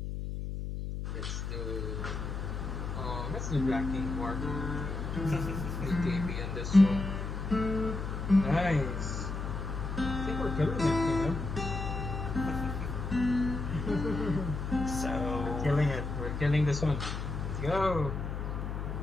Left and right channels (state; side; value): noise; left; hum, 4 dB below the sound